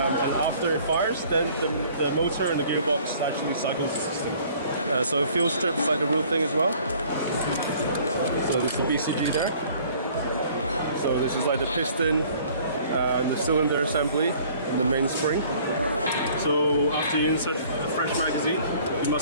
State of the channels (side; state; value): both; inverted; correlation -0.54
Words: after it fires, then the motor and the gearbox actually cycles the system. So it feels stripped like the real thing as well. So this is the BCG there. So this is like the piston and the cylinder assembly and the main spring. So after you insert a fresh magazine, you